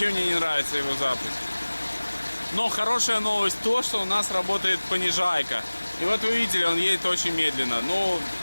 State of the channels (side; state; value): both; inverted; correlation -1.00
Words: мне не нравится его запуск. Но хорошая новость то, что у нас работает понижайка. И вот вы видели, он едет очень медленно. Но,